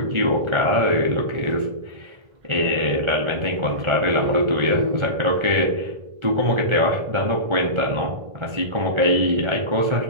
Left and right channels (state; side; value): late; left; 1.4 ms